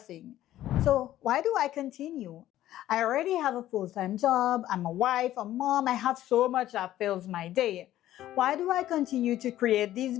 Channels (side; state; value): right; quieter; 13.5 dB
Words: So why do I continue? I already have a full-time job, I'm a wife, a mom, I have so much that fills my day. Why do I continue to create these